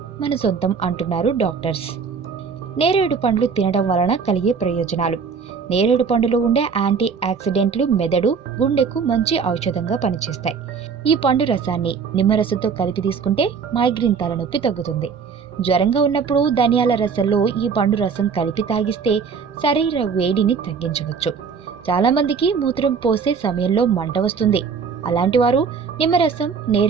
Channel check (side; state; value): left; quieter; 5.9 dB